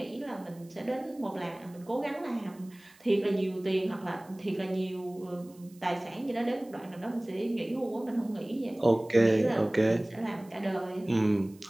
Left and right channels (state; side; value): noise; right; hiss, 27 dB below the sound